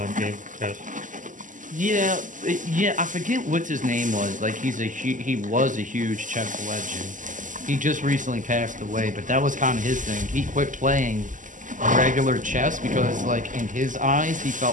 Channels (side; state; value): left; late; 0.37 ms